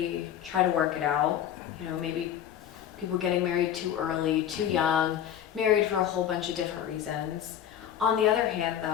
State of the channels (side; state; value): right; quieter; 10.0 dB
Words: try to work it out. Maybe people getting married too early, too young, married for a whole bunch of different reasons. On the other hand,